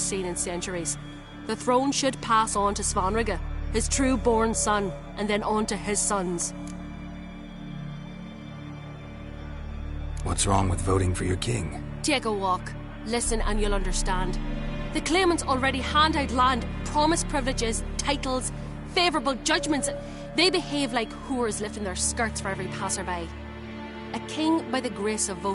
in centuries. The throne should pass on to Svanrig, his true-born son, and then on to his sons. What's wrong with voting for your king? Take a walk. Listen and you'll understand. The claimants already hand out land, promise privileges, titles, favourable judgments. They behave like whores lifting their skirts for every passerby. A king by the grace of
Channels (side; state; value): both; identical; correlation 1.00